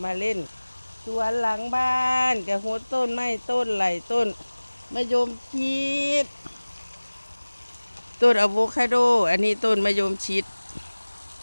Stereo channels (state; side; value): inverted; both; correlation -1.00